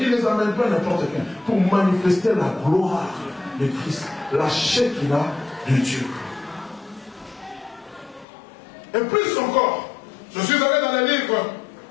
il ne les amène pas n'importe qui, pour manifester la gloire de Christ, la Shekinah de Dieu. Et plus encore, je suis allé dans les livres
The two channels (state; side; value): drops out; right; at 8.2 s